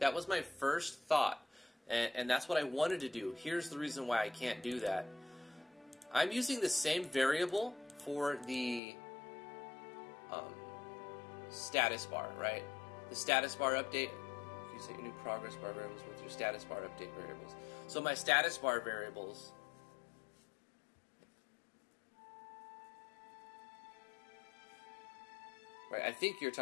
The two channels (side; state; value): right; drops out; at 8.8 s